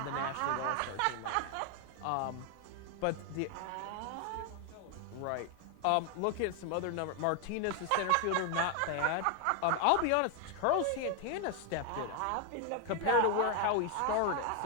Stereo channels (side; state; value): both; different; correlation 0.01